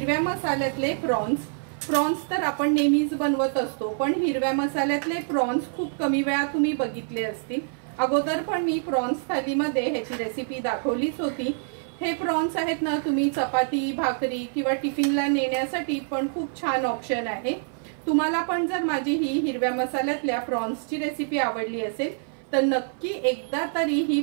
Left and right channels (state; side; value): silent; left; 56 dB below the other